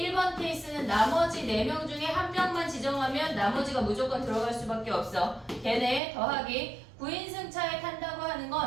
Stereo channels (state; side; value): drops out; left; at 6.0 s